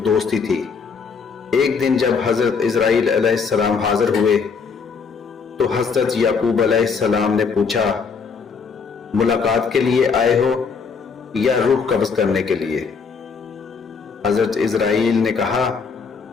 دوستی تھی. ایک دن جب حضرت اسرائیل علیہ السلام حاضر ہوئے تو حضرت یعقوب علیہ السلام نے پوچھا، ملاقات کے لیے آئے ہو یا روح قبض کرنے کے لیے؟ حضرت اسرائیل نے کہا،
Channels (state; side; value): quieter; right; 5.5 dB